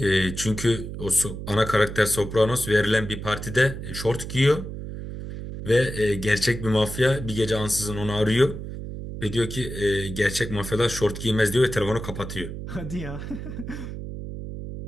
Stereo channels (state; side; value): noise; right; hum, 8 dB below the sound